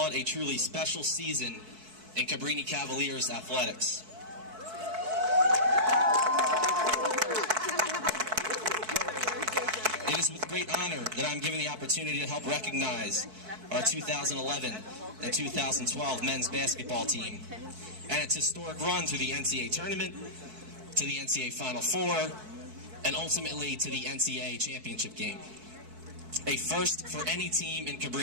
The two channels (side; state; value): left; late; 4.6 ms